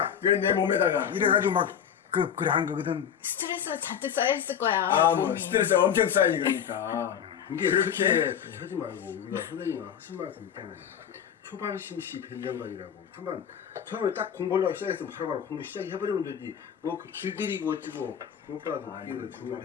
그래, 내 몸에다가. 이래가지고 막 그래 한 거거든. 스트레스가 잔뜩 쌓여있을 거야. 아, 뭐, 몸이. 스트레스 엄청 쌓이지, 그러니까. 이게 그렇게 하지 말고 우리가 선생님이 학습 말씀 있잖아요. 초반 심시 변정관이라고 한번 처음에 딱 공부하려고 시작했으면 바로바로 공부 시작해버리면 되지 뭐 그 길들이고 어쩌고 그것보다도 아니,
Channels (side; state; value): right; quieter; 8.5 dB